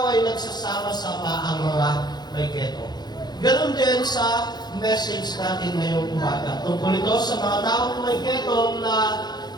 ay nagsasama-sama ang mga may keto. Ganon din sa message natin ngayong umaga. Tungkol ito sa mga taong may keto na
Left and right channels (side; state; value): right; late; 0.20 ms